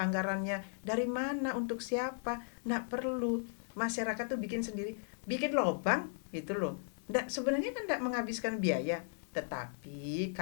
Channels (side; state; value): right; silent; digital silence